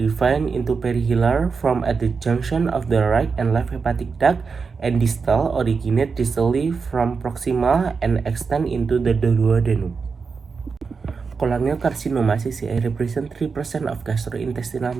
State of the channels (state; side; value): quieter; left; 5.1 dB